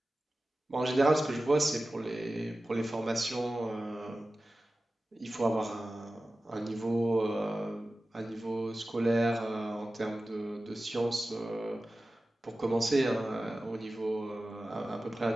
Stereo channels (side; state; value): both; normal; correlation 0.95